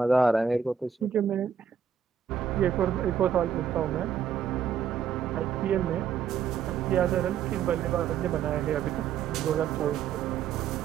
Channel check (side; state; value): left; quieter; 7.6 dB